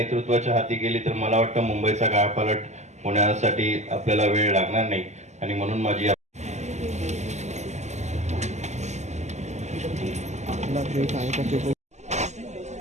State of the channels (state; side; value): late; left; 0.33 ms